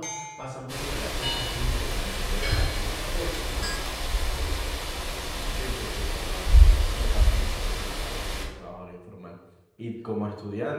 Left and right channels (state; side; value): identical; both; correlation 1.00